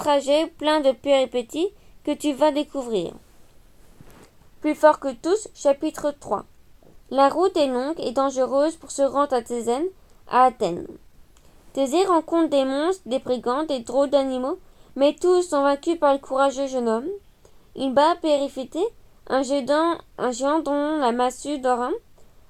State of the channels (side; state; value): both; identical; correlation 1.00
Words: plein de péripéties que tu vas découvrir. Plus fort que tous, chapitre 3. La route est longue et dangereuse pour se rendre à Athènes. Thésée rencontre des monstres, des brigands, des drôles d'animaux, mais tous sont vaincus par le courageux jeune homme. Il bat Périphété, un géant dont la massue d'or,